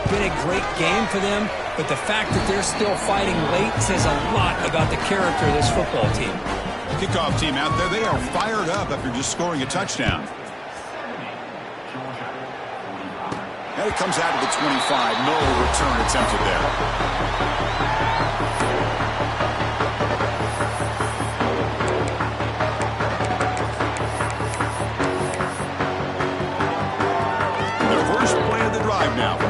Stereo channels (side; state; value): both; identical; correlation 1.00